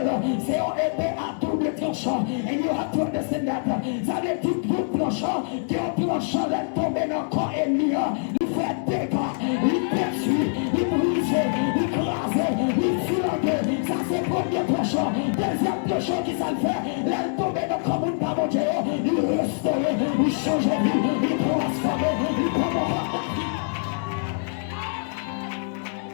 c'est une épée à double tranchant. And you have to understand that. Ça veut dire tout tranchant, qui est tranchant, laisse tomber dans le corps ennemi. Il fait dégâts, il détruit, il brise, il écrase, il filangue. Ça c'est le premier tranchant. Deuxième tranchant qui ça le fait, laisse tomber dans le corps de mon Dieu. Il restaure, il change de vie, il transforme, il prend.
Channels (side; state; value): right; silent; digital silence